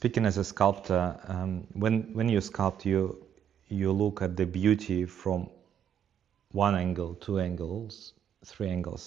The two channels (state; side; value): quieter; left; 8.9 dB